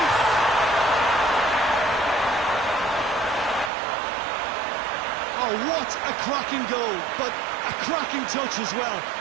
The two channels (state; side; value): drops out; left; at 3.7 s